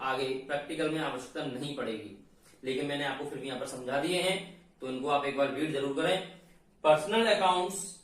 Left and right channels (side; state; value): both; identical; correlation 1.00